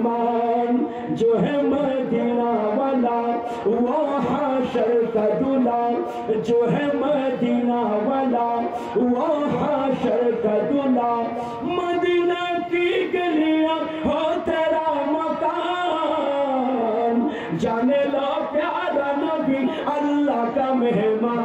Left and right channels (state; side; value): identical; both; correlation 1.00